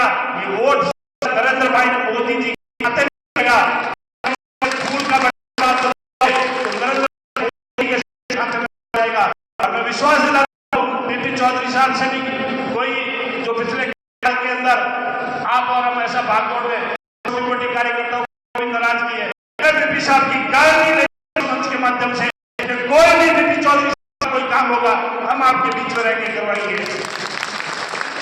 ये वोट नरेंद्र भाई मोदी जी के खाते में लगेगा। फूल का मैं विश्वास दिलाता हूं बीपी चौधरी साहब से भी कोई जो पिछले साल के अंदर आप और हम ऐसा भाग दौड़ में छोटी मोटी कार्यकर्ताओं को नाराज किए, बीपी साहब की गारंटी मंच के माध्यम से कोई भी बीपी चौधरी साहब कोई काम होगा हम आपके बीच में रहकर करवाएंगे।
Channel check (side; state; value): both; identical; correlation 1.00